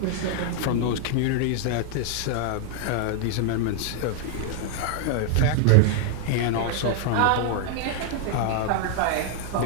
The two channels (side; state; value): both; different; correlation 0.00